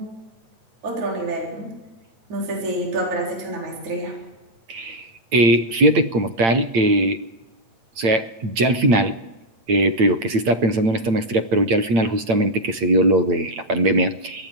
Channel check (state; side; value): late; left; 8.8 ms